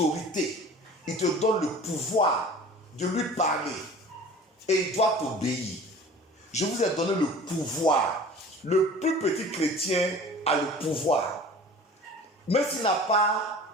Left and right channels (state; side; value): normal; both; correlation 0.43